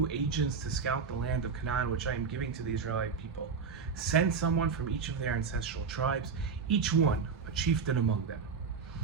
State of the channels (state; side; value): quieter; left; 5.6 dB